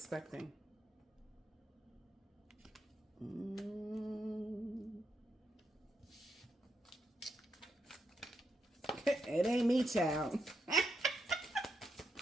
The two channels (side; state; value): both; normal; correlation 0.82